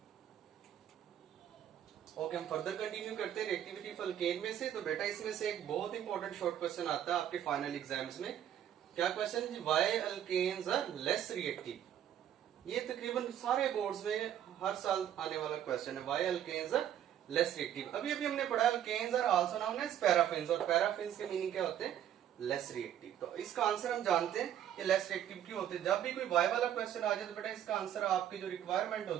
ओके, हम फर्दर कंटिन्यू करते हैं रिएक्टिविटी ऑफ अल्केन में से। तो बेटा इसमें से एक बहुत इंपॉर्टेंट शॉर्ट क्वेश्चन आता है आपके फाइनल एग्जाम्स में। क्या क्वेश्चन है? Why alkanes are less reactive. ये तकरीबन सारे बोर्ड्स में हर साल आने वाला क्वेश्चन है, why alkanes are less reactive. अभी अभी हमने पढ़ा alkanes are also known as paraffins, और पैराफिन्स के मीनिंग क्या होते हैं? Less reactive. तो इसका आंसर हम जानते हैं कि लेस रिएक्टिव क्यों होते हैं। जब भी कोई वाई वाला क्वेश्चन आ जाए तो बेटा इसका आंसर आपकी जो रिक्वायरमेंट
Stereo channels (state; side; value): quieter; left; 10.5 dB